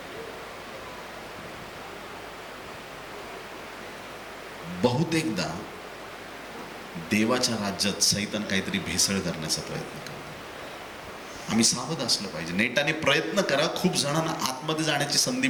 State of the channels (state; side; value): identical; both; correlation 1.00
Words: बहुतेकदा देवाच्या राज्यात सैतान काहीतरी भेसळ करण्याचा प्रयत्न करतो. आम्ही सावध असलं पाहिजे. नेटाने प्रयत्न करा, खूप जणांना आतमध्ये जाण्याची संधी